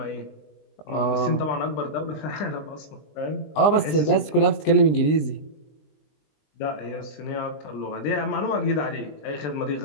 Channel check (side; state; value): right; late; 20 ms